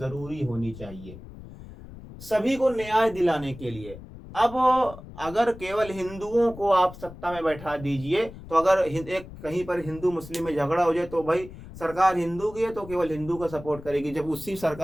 होनी चाहिए सभी को न्याय दिलाने के लिए। अब अगर केवल हिंदुओं को आप सत्ता में बैठा दीजिए तो अगर एक कहीं पर हिंदू मुस्लिम में झगड़ा हो जाए तो भाई सरकार हिंदू की है तो केवल हिंदू का सपोर्ट करेगी। जब उसी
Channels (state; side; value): noise; left; rumble, 15 dB below the sound